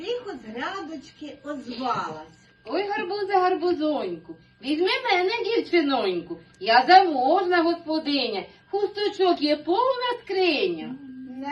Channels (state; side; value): identical; both; correlation 1.00